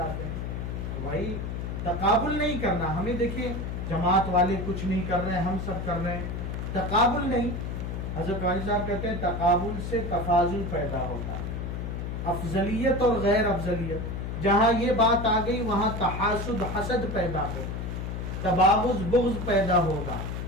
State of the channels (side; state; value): left; noise; hum, 4 dB below the sound